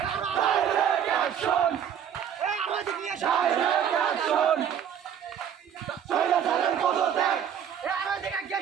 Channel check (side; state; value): left; quieter; 8.8 dB